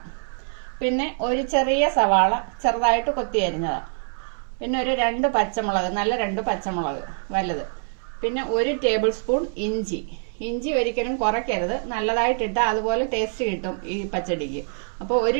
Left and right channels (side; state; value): left; silent; 62 dB below the other